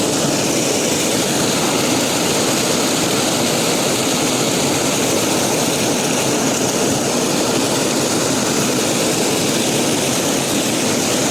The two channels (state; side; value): noise; right; rumble, 29 dB below the sound